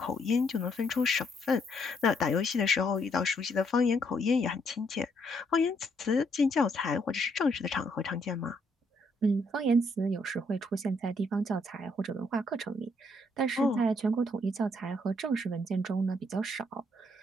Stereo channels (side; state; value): both; normal; correlation 0.71